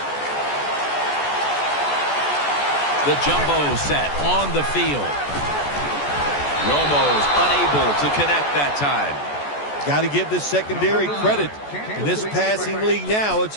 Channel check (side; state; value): right; late; 14 ms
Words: The jumbo set on the field. Romo's unable to connect that time. Got to give this secondary credit. In this passing league now, it's